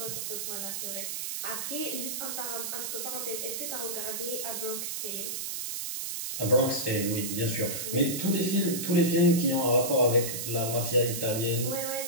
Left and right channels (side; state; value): right; noise; hiss, 4 dB below the sound